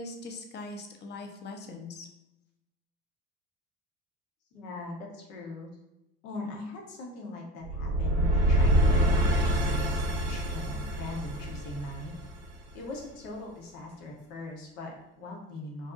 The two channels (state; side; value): normal; both; correlation 0.31